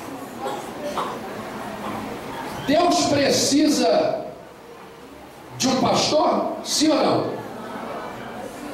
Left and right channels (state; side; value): identical; both; correlation 1.00